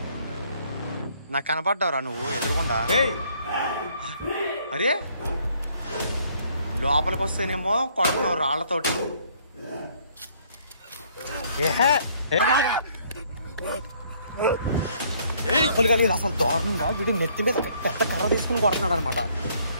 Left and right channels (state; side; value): inverted; both; correlation -0.64